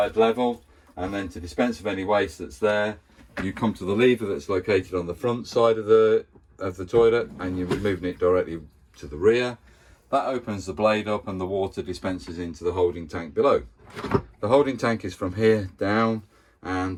level, and then to dispense of any waste that's there, you come to the lever that's located on the front side of the toilet, and you're moving it directly to the rear. That opens the blade up and the water dispenses into the holding tank below. The holding tank is from here down,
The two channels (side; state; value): both; identical; correlation 1.00